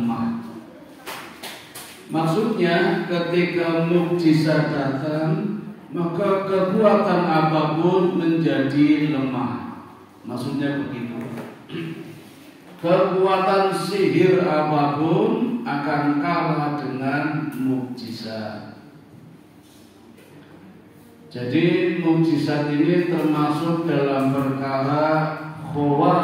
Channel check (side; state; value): both; identical; correlation 1.00